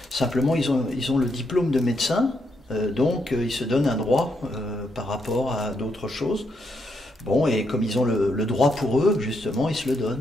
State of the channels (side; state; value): both; normal; correlation 0.78